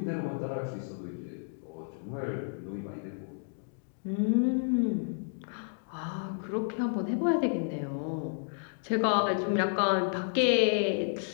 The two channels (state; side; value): silent; right; digital silence